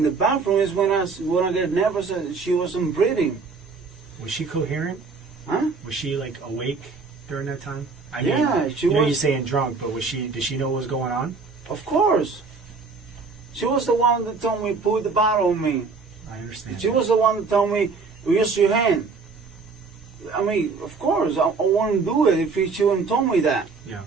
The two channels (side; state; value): left; quieter; 4.6 dB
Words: the bathroom is when I get nervous. She wasn't breathing. Was she coherent? Huh? Was she like awake during that time? I Yeah, mean, she you know was. you're saying drunk, but did she know what was going on? Of course. She was the one that told me put the bottle on me. I understand. She was the one that told me use your hand. I mean, of course, I wouldn't do it if she wouldn't told me that. Yeah,